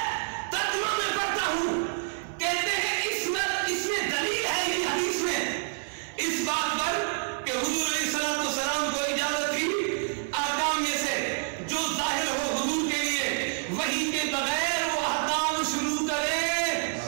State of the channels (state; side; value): silent; left; 58 dB below the other